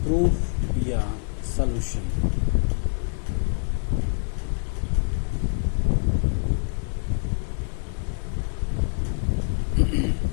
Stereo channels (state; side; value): silent; right; digital silence